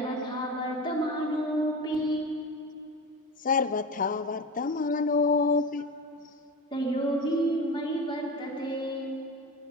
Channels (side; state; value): both; normal; correlation 0.26